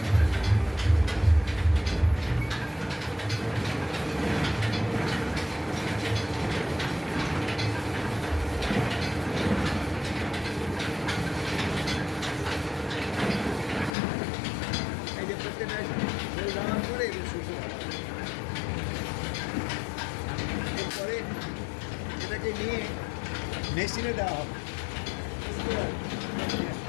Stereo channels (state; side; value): drops out; right; at 14.0 s